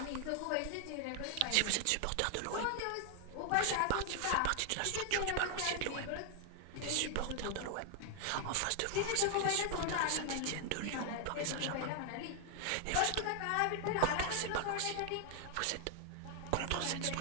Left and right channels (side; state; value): both; different; correlation 0.00